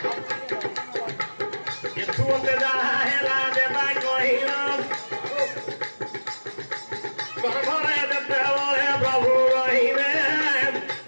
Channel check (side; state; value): both; inverted; correlation -1.00